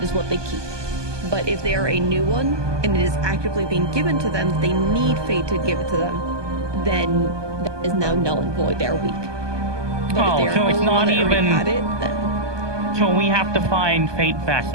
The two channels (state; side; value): late; left; 1.2 ms